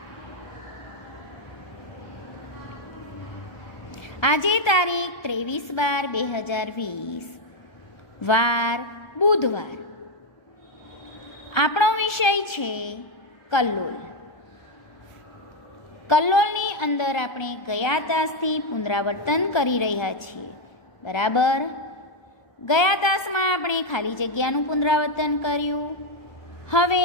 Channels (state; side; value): late; right; 1.3 ms